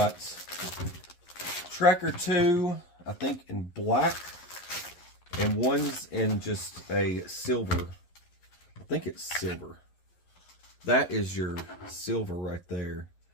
Tracker 2, I think in black, and one's in just a silver. I think it's silver. That is your silver right there.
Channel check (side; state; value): right; late; 11 ms